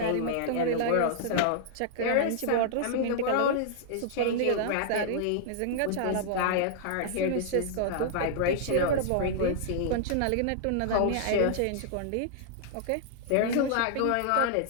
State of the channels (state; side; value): different; both; correlation -0.01